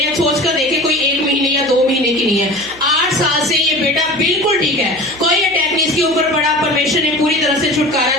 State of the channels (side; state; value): right; noise; hum, 24 dB below the sound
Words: हैं सोच कर देखे, कोई 1 महीने या 2 महीने की नहीं है। 8 साल से ये बेटा बिल्कुल ठीक है, कोई अटैक नहीं इसके ऊपर पड़ा। परमेश्वर ने पूरी तरह से छुटकारा